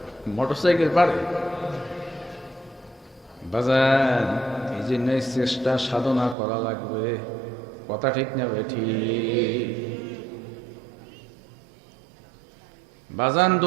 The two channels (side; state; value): left; drops out; at 6.4 s